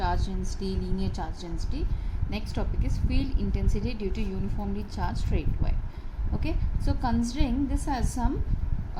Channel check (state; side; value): identical; both; correlation 1.00